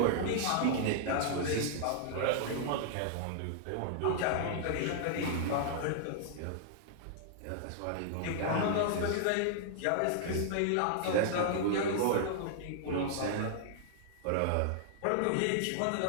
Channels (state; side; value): different; both; correlation -0.01